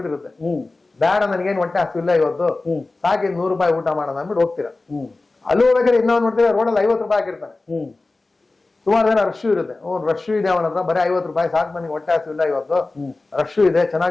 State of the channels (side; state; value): right; quieter; 3.3 dB